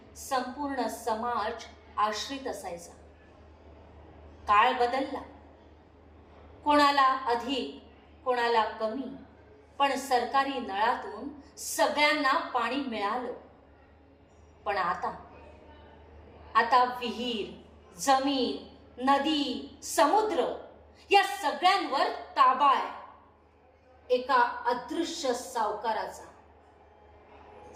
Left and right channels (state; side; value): identical; both; correlation 1.00